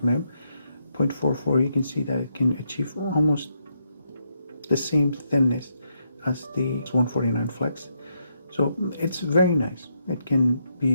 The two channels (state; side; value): inverted; both; correlation -0.79